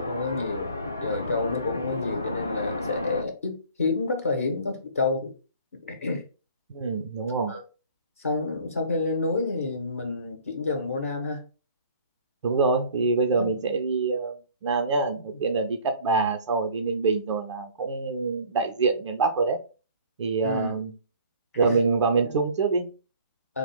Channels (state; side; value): inverted; both; correlation -0.50